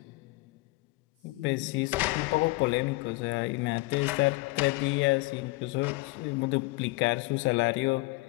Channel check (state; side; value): quieter; right; 23.3 dB